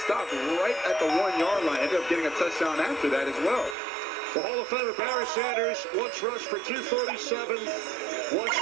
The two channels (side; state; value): left; drops out; at 3.8 s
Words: right at the 1-yard line. Ended up getting a touchdown after that as well. The Hall of Famer Barry Sanders once rushed for 237, once